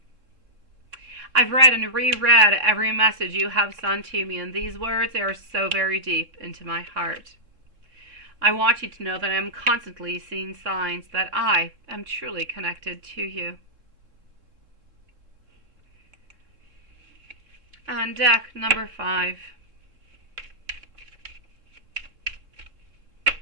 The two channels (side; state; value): left; late; 3.7 ms